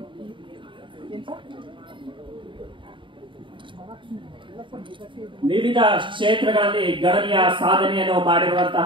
ಏನು ಸರ್ ವಿವಿಧ ಕ್ಷೇತ್ರಗಳಲ್ಲಿ ಗಣನೀಯ ಸಾಧನೆಯನ್ನು ಮಾಡಿರುವಂತಹ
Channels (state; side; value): late; left; 0.24 ms